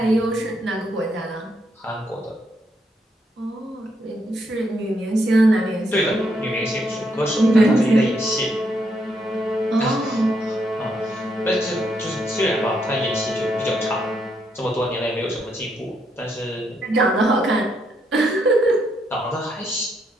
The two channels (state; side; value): normal; both; correlation 0.76